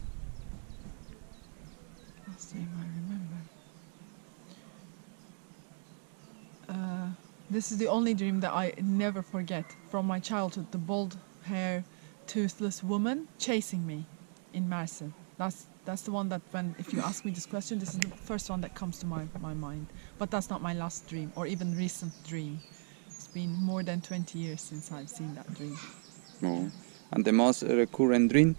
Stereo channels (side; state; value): left; silent; 54 dB below the other